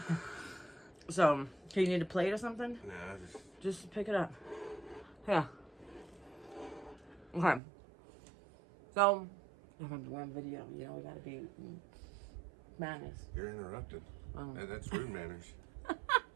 So, do you need a plate or something? Nah, just pick it up. Yeah. Okay. So, I'm doing a video. You know, we gotta be manners. You're interrupted. That's rude manners.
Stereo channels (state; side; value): drops out; left; at 7.6 s